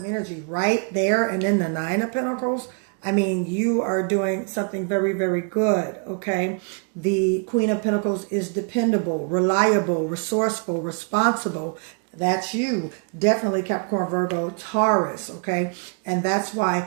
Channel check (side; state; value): left; quieter; 38.9 dB